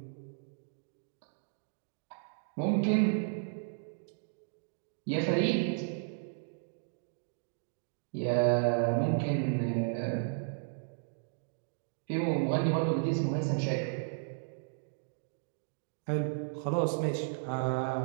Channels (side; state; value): left; silent; digital silence